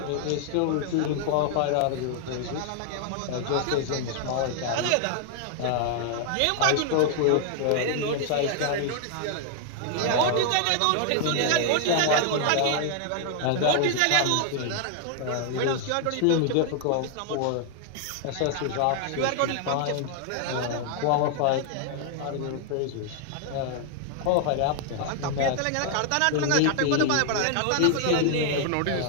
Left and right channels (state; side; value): different; both; correlation 0.00